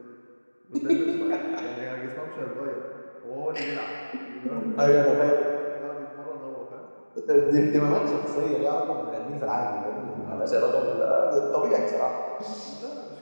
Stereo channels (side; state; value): both; inverted; correlation -1.00